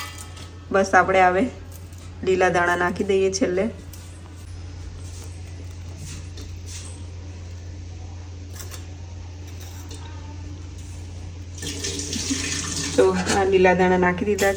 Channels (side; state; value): both; identical; correlation 1.00